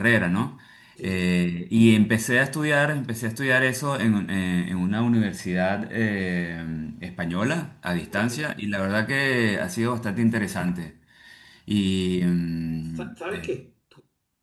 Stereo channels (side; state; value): both; identical; correlation 1.00